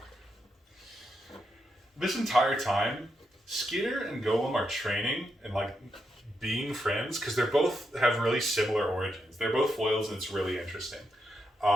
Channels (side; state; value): both; normal; correlation 0.83